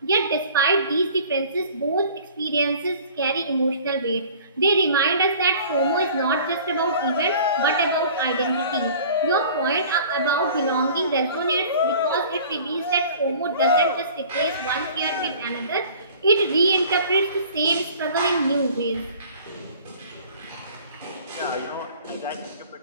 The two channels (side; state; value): both; inverted; correlation -0.48